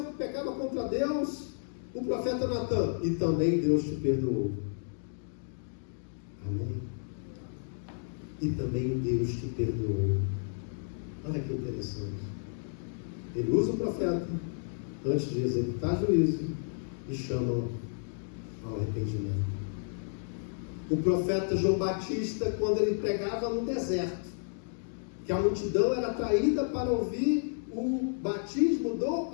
que pecava contra Deus, o profeta Natan: e também Deus te perdoou. Amém? E também Deus te perdoou. Olha que interessante. Ele usa o profeta antes de executar juízo e chama ao arrependimento. O profeta João Batista, quando ele pregava no deserto, que a multidão era atraída para ouvir o batismo do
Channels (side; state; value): right; silent; digital silence